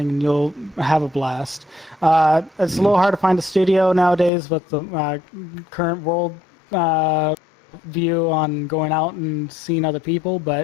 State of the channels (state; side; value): drops out; right; at 4.3 s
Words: and you'll have a blast. It's a little hard to find a studio nowadays with the current world view on going out and seeing other people,